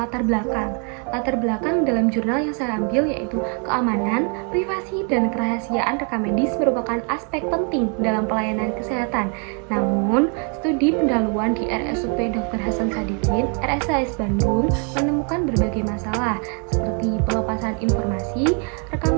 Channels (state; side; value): quieter; left; 38.8 dB